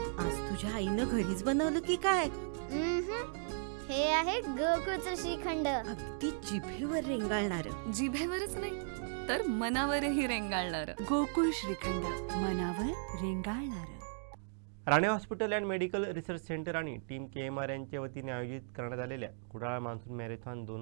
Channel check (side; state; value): left; silent; digital silence